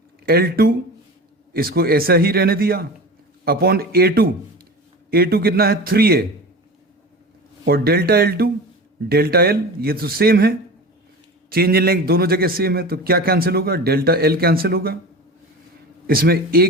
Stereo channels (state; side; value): normal; both; correlation 0.32